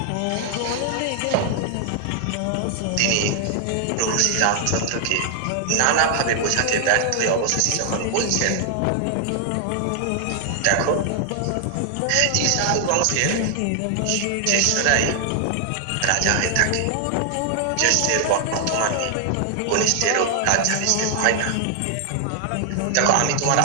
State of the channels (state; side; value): different; both; correlation 0.00